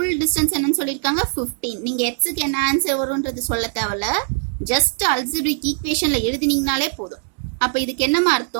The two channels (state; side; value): silent; left; digital silence